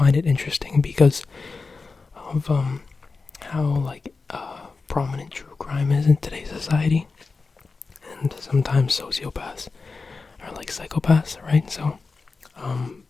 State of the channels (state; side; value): quieter; right; 4.2 dB